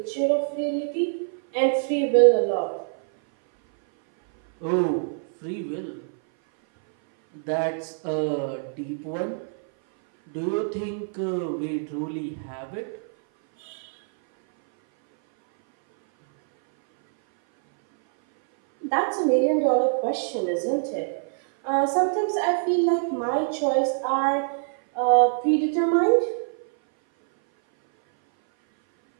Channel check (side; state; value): left; silent; 58 dB below the other